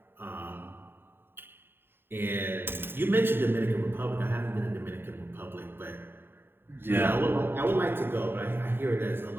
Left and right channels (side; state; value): left; late; 0.11 ms